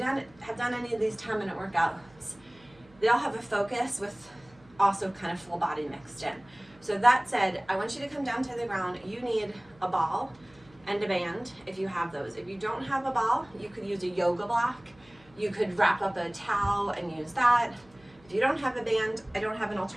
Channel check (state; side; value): noise; right; hum, 27 dB below the sound